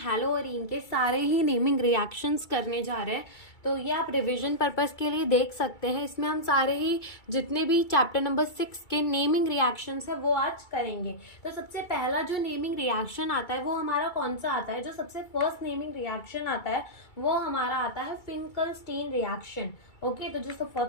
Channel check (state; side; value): late; right; 2.3 ms